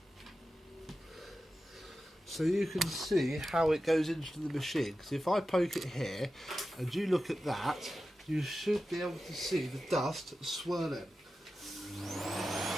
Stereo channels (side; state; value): both; normal; correlation 0.93